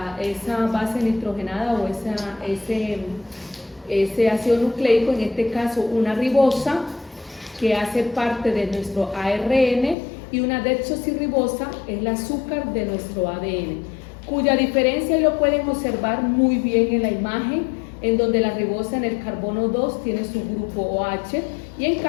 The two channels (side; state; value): right; drops out; at 10.0 s